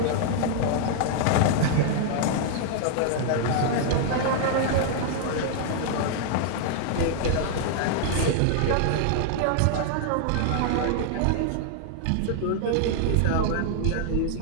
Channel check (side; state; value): both; different; correlation -0.01